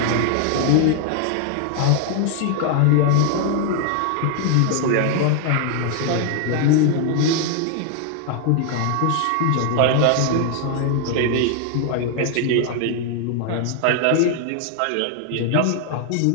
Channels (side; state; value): both; different; correlation 0.00